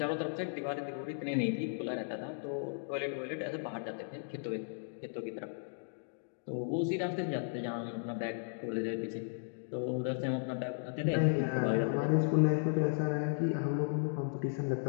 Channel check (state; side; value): silent; right; digital silence